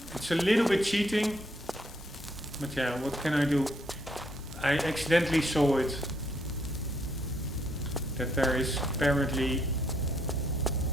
it's a little bit cheating, but yeah, what can I do? I accidentally saw it, that there is apparently,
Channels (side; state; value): both; normal; correlation 0.72